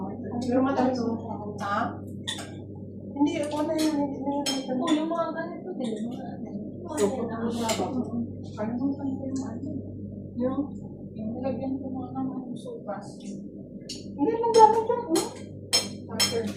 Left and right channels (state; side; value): identical; both; correlation 1.00